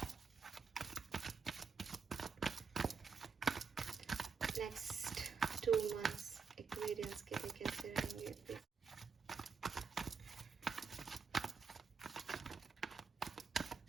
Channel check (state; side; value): quieter; left; 5.5 dB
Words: Next 2 months Aquarians के लिए कैसे रहेंगे please.